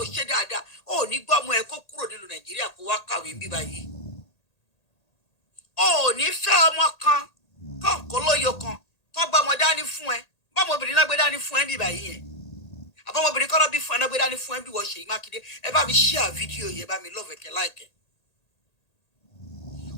ṣe dáadáa ò ní gbọ́ ọmọ ẹ kó kúrò nílùú Nàìjíríà kó wá kàwé bí báyìí. Ò ní fẹ́ ọmọ kan kọ̀ọ̀kan lóyo kan tó gbọ́ ọmọ dání fún ẹ bọ́mọbìnrin náà gbé dání fún ẹ bí báyìí yẹn àbọ̀mọbìnrin kọ́ lọ́ bí fún ẹ náà gbé dání fún ẹ bí wọ́n Ṣèyí Mákindé ẹ bá mi share fídíò yẹn bá mi love ẹ̀kẹ́ láìkẹ́.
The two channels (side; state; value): right; late; 1.8 ms